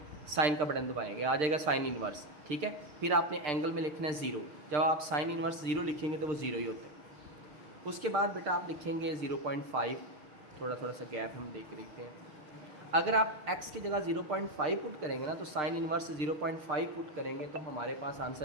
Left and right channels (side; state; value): left; late; 6.6 ms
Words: साइन का बटन दबाएंगे, आ जाएगा साइन इनवर्स, ठीक है। फिर आपने एंगल में लिखना है 0, जब आप साइन इनवर्स 0 लिखेंगे तो वो 0 ही होता है। उसके बाद बेटा आप लिखेंगे 0.5, थोड़ा थोड़ा सा गैप हम देख के देखते हैं। अगर आप x की जगह 0.5 पुट करेंगे ना, तो साइन इनवर्स 0.5 पुट करेंगे तो हमारे पास